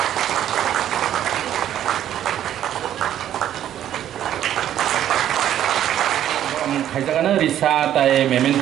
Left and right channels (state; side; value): quieter; left; 11.2 dB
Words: Khaijagana risa tai